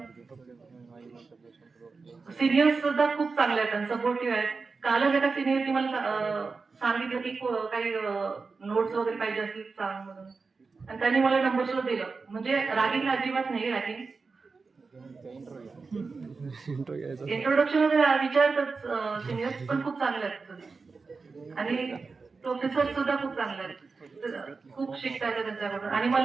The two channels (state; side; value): quieter; left; 4.4 dB